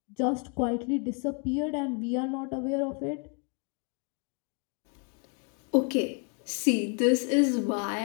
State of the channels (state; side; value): quieter; right; 36.5 dB